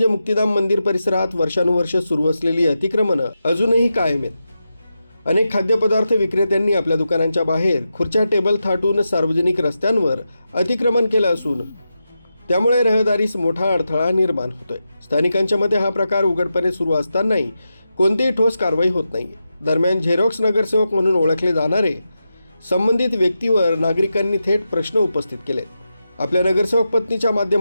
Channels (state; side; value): inverted; both; correlation -0.89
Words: मुक्तिधाम मंदिर परिसरात वर्षानुवर्ष सुरू असलेली अतिक्रमणं अजूनही कायम आहेत. अनेक खाद्यपदार्थ विक्रेत्यांनी आपल्या दुकानांच्या बाहेर खुर्च्या टेबल थाटून सार्वजनिक रस्त्यांवर अतिक्रमण केलं असून त्यामुळे रहदारीस मोठा अडथळा निर्माण होतोय. स्थानिकांच्या मते हा प्रकार उघडपणे सुरू असतानाही कोणतीही ठोस कारवाई होत नाही. दरम्यान झेरॉक्स नगरसेवक म्हणून ओळखले जाणारे संबंधित व्यक्तीवर नागरिकांनी थेट प्रश्न उपस्थित केले. आपल्या नगरसेवक पत्नीच्या